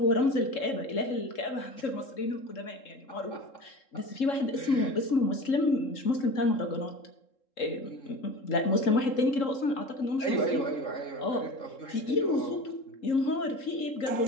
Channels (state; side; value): late; right; 3.7 ms